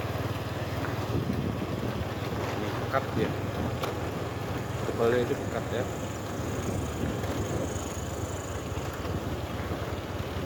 Ini pekat ya. Tebalnya itu pekat ya.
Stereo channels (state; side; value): identical; both; correlation 1.00